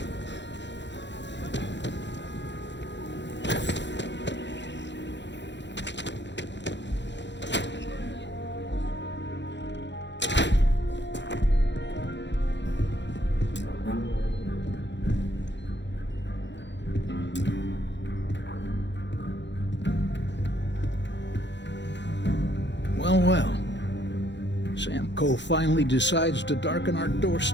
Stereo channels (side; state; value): right; late; 0.52 ms